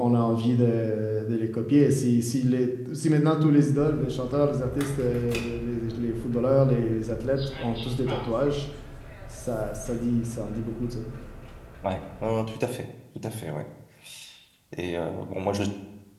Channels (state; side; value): identical; both; correlation 1.00